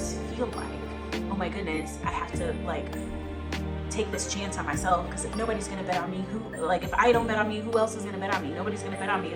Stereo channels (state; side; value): identical; both; correlation 1.00